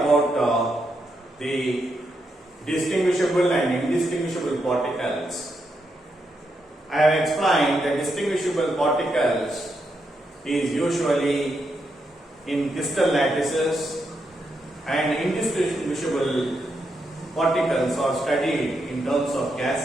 the distinguishable and indistinguishable particles. I have explained that distinguishable particles is usually in crystal lattices and indistinguishable particles are studied in terms of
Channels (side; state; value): both; normal; correlation 0.82